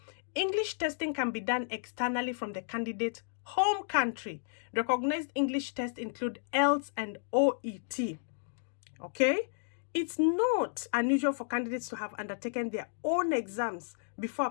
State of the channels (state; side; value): silent; right; digital silence